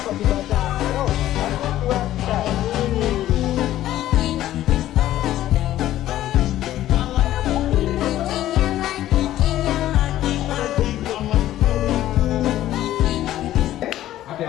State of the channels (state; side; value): quieter; right; 13.5 dB